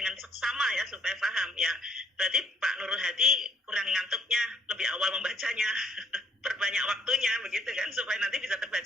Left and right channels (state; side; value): normal; both; correlation 0.67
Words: seksama ya, supaya paham ya. Berarti Pak Nurul Hadi kurang ngantuknya, lebih awal membacanya, perbanyak waktunya begitu kan, supaya nanti bisa